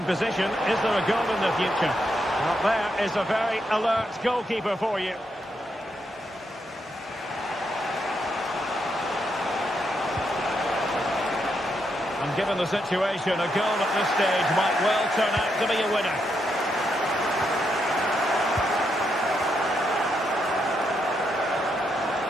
position. Is there a goal in the future? Well, there is a very alert goalkeeper for you. And given the situation, a goal at this stage might well turn out to be a winner.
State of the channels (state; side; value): normal; both; correlation 0.80